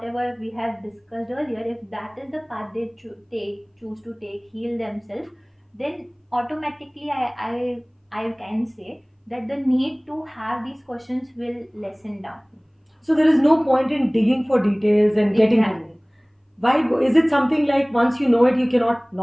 we have discussed earlier, if that is the path they choose to take, heal themselves, then automatically I can say that the need to have these questions will lessen down. So there is no point in digging for details and getting to know. Exactly. Why is it something like once you know it, you cannot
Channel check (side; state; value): both; identical; correlation 1.00